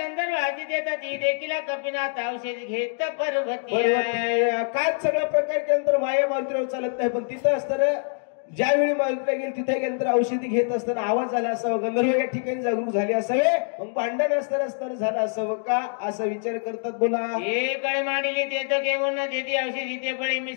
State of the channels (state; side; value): silent; right; 62 dB below the other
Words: आधी देतात ती देखील कपिनाथ औषधी घेत पर्वती काय सगळा प्रकार केल्यानंतर माया मारुतीवर चालत नाही पण तिथं असताना ज्यावेळी मारुतीला गेली तिथे गेल्यानंतर औषधी घेत असताना आवाज झाला असावं गंधर्व या ठिकाणी जागरूक झाले असावे मग भांडण असताना झालं असावं का असा विचार करतात. बोला कळे मांडली ते तर घेऊन देती औषधी ते बळी